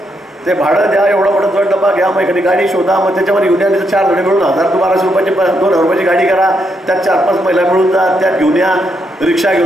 ते भाडं द्या, एवढा मोठा दोन डबा घ्या, मग एखादी गाडी शोधा, मग त्याच्यामध्ये घेऊन या. 4 जण मिळून 1,000 ते 1,200 रुपयाची 2,000 रुपयाची गाडी करा. त्यात 4-5 महिला मिळून जा, त्यात घेऊन या. रिक्षा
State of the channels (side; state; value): both; normal; correlation 0.79